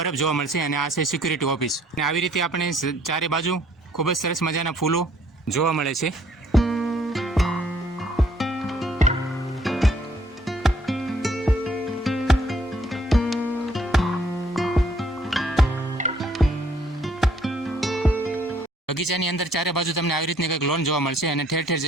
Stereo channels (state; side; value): normal; both; correlation 0.63